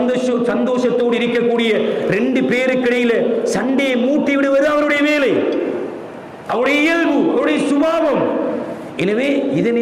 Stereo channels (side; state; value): both; identical; correlation 1.00